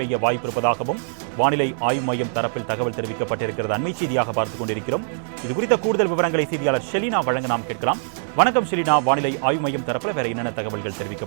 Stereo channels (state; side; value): silent; left; digital silence